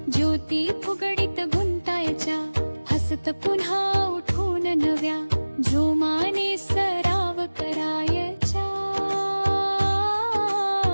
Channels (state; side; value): inverted; both; correlation -1.00